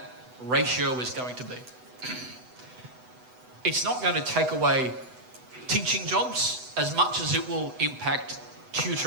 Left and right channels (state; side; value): late; left; 8.0 ms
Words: ratio is going to be. It's not going to take away teaching jobs as much as it will impact